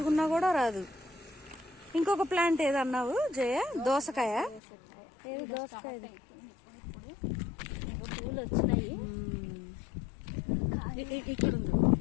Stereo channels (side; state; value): right; drops out; at 4.6 s